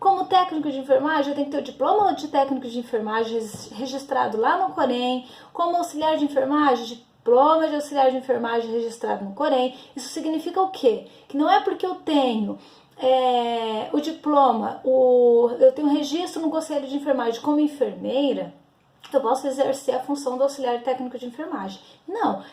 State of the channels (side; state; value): both; identical; correlation 1.00